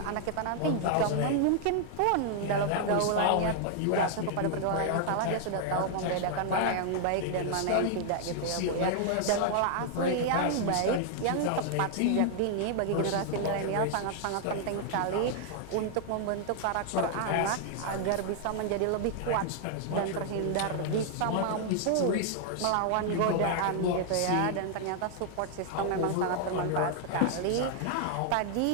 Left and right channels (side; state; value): both; different; correlation -0.01